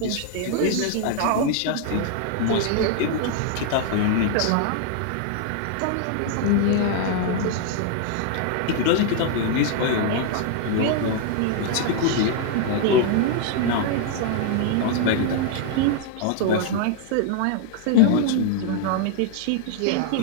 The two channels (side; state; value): both; different; correlation 0.00